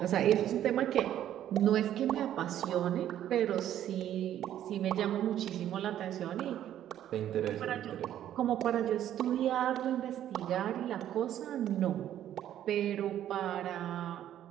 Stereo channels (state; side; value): quieter; left; 11.4 dB